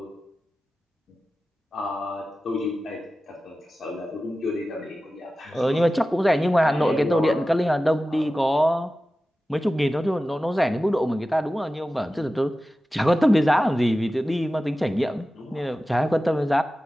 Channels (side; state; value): both; normal; correlation 0.95